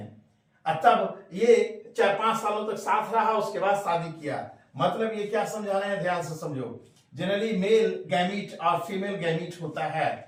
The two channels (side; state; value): both; identical; correlation 1.00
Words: तब ये 4-5 सालों तक साथ रहा, उसके बाद शादी किया। मतलब ये क्या समझा रहे हैं, ध्यान से समझो। जनरली मेल गैमीट और फीमेल गैमीट होता